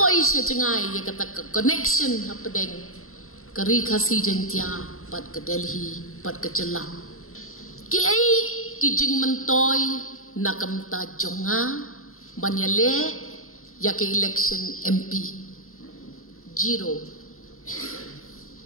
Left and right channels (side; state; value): right; late; 0.62 ms